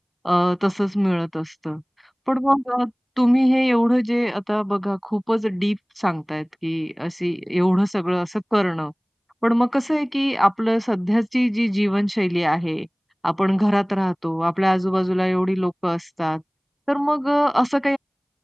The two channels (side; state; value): both; identical; correlation 1.00